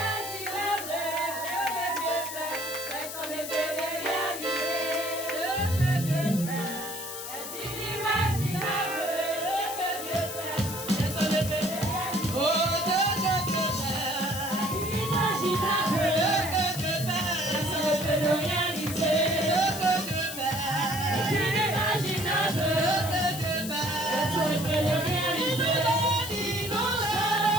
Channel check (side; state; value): left; noise; hiss, 8 dB below the sound